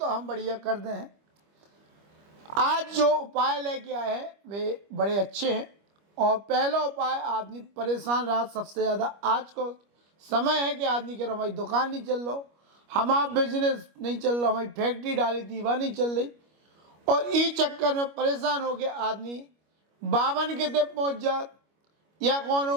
हम बढ़िया कर दे हैं। आज जो उपाय लेके आए हैं वे बड़े अच्छे हैं। और पहला उपाय, आदमी परेशान रहा सबसे ज़्यादा। आज को समय है कि आदमी कह रहा हमारी दुकान नहीं चल रहा, हमारा बिजनेस नहीं चल रहा, हमारी फैक्ट्री डाली थी वह नहीं चल रही, और इस चक्कर में परेशान हो गया आदमी बावन के ते पहुँच जात, या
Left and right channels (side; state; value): left; late; 25 ms